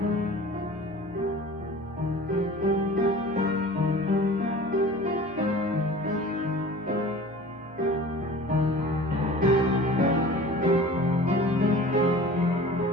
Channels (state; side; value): noise; left; hum, 28 dB below the sound